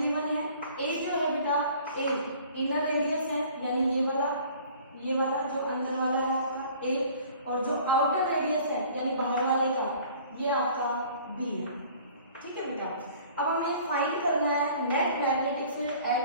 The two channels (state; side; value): inverted; both; correlation -0.50